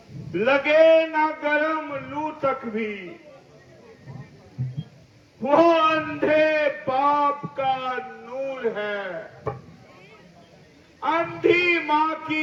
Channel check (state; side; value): identical; both; correlation 1.00